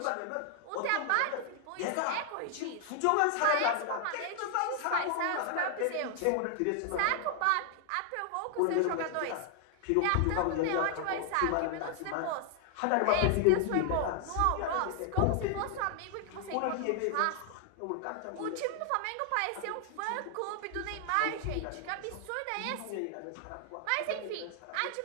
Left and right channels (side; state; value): both; different; correlation 0.00